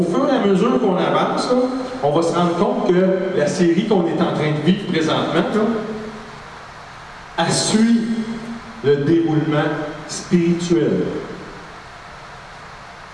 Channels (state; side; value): identical; both; correlation 1.00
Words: fur et à mesure qu'on avance, là, on va se rendre compte que la série qu'on est en train de vivre présentement, là, elle suit le déroulement spirituel.